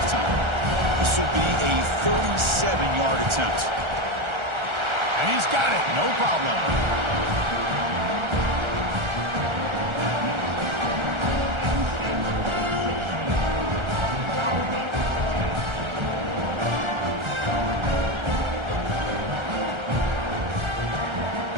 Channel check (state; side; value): late; left; 1.3 ms